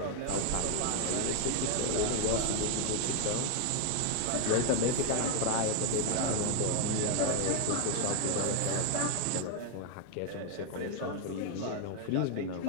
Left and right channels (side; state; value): both; different; correlation 0.00